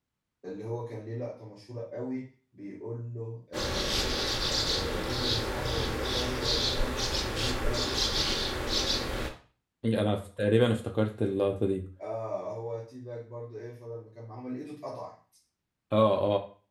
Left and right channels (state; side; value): identical; both; correlation 1.00